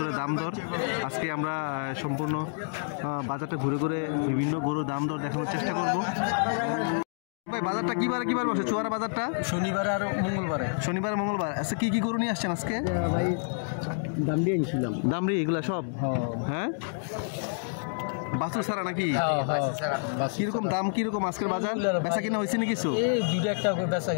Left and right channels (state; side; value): silent; right; digital silence